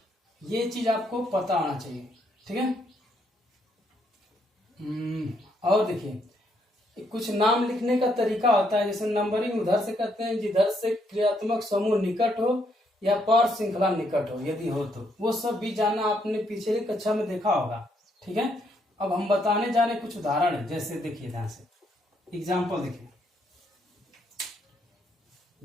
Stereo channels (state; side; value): normal; both; correlation 0.73